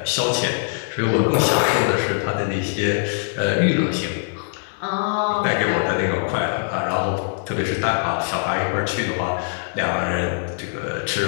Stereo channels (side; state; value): right; silent; digital silence